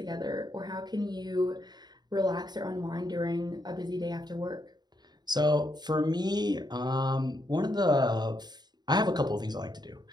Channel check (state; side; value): late; left; 0.20 ms